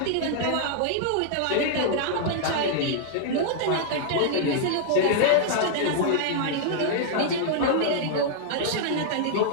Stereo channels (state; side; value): different; both; correlation -0.01